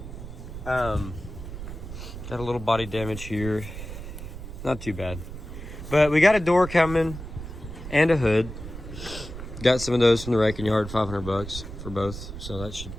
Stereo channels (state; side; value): noise; right; rumble, 10 dB below the sound